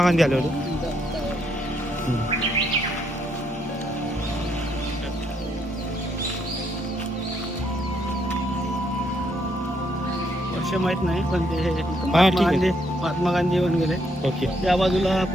गांधी आले होते. वर्ष माहित नाही पण ते ठीक महात्मा आहे. गांधी महात्मा गांधी येऊन गेले. ओके. त्या बाजूला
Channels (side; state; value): both; normal; correlation 0.73